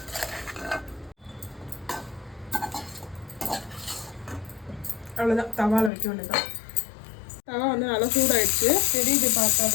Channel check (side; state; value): right; drops out; at 5.9 s